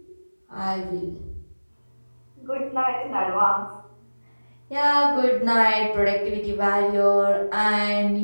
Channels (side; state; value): both; inverted; correlation -1.00